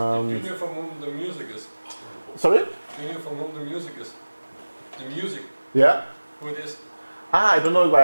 you from whom the music is? Sorry? Can you from whom the music is? The music. Yeah. Who it is? I don't know it by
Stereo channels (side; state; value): both; inverted; correlation -1.00